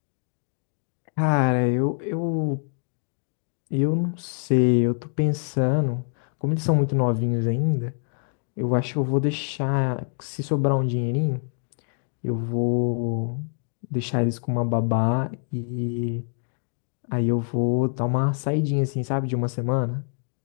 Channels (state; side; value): silent; right; 61 dB below the other